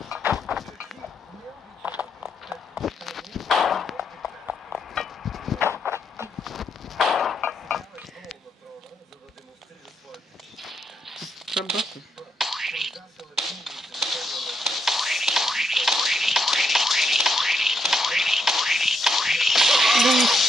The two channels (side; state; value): both; normal; correlation 0.78